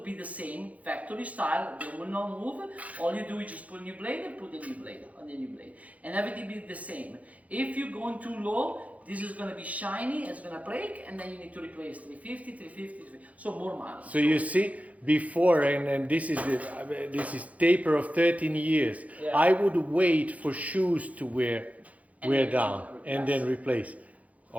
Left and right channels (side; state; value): left; late; 0.069 ms